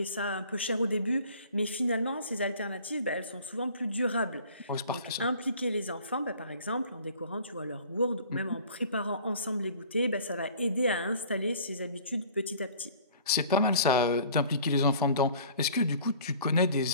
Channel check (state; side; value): inverted; both; correlation -0.49